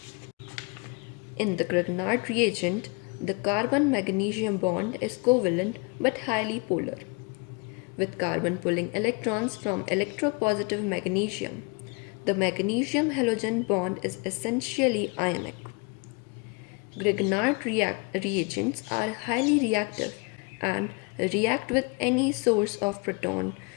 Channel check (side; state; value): right; quieter; 31.0 dB